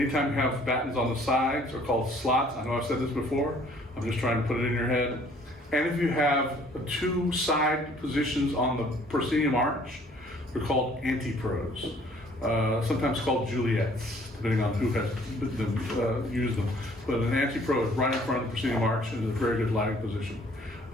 you have battens on the sides, are called slots. I know I've said this before. I'm just trying to put it in your head. And if you have 2 side positions on the proscenium arch, they're called antipros. Sometimes called Juliets, depending on who has used them. But an antipro is right in front of the proscenium arch, and is a very good lighting position.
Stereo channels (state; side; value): normal; both; correlation 0.58